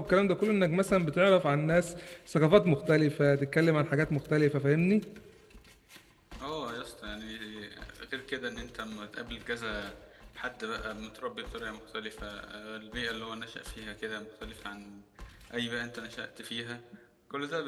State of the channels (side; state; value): both; identical; correlation 1.00